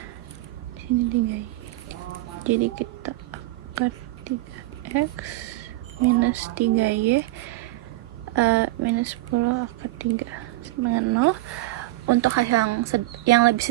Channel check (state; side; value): quieter; left; 18.5 dB